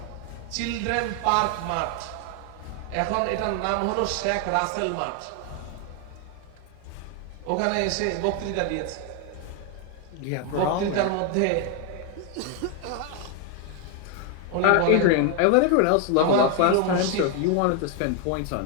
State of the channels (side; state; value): both; different; correlation 0.01